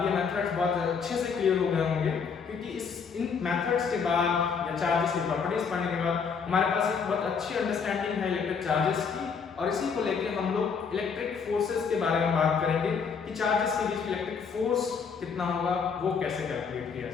ये मेथड्स बहुत अच्छे से क्लियर हो गए होंगे, क्योंकि इन मेथड्स के बाद या चार्जेस की प्रॉपर्टीज पढ़ने के बाद हमारे पास एक बहुत अच्छी अंडरस्टैंडिंग है इलेक्ट्रिक चार्जेस की, और इसी को लेके हम लोग इलेक्ट्रिक फोर्सेस के बारे में बात करेंगे कि चार्जेस के बीच इलेक्ट्रिक फोर्स कितना होगा, वो कैसे कैलकुलेट किया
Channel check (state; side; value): quieter; right; 6.0 dB